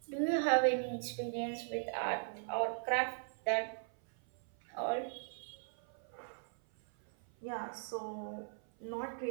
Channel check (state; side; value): silent; left; 52 dB below the other